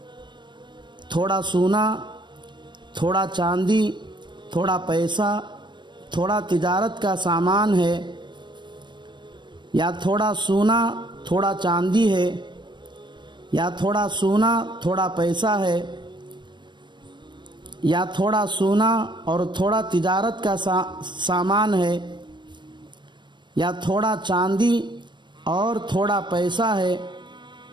تھوڑا سونا، تھوڑا چاندی، تھوڑا پیسہ، تھوڑا تجارت کا سامان ہے، یا تھوڑا سونا تھوڑا چاندی ہے، یا تھوڑا سونا تھوڑا پیسہ ہے، یا تھوڑا سونا اور تھوڑا تجارت کا سامان ہے، یا تھوڑا چاندی اور تھوڑا پیسہ ہے،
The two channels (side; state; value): left; late; 0.22 ms